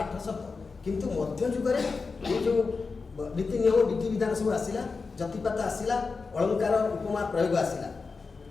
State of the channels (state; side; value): quieter; right; 4.5 dB